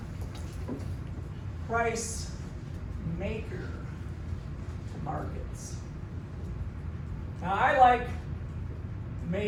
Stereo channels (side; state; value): both; identical; correlation 1.00